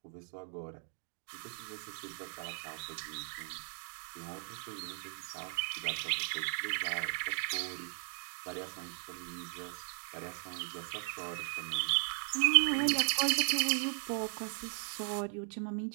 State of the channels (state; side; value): silent; left; digital silence